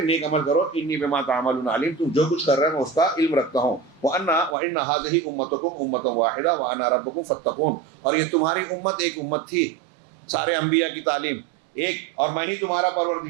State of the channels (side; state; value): left; drops out; at 4.5 s